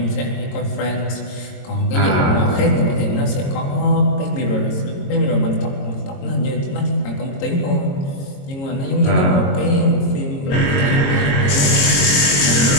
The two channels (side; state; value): right; late; 22 ms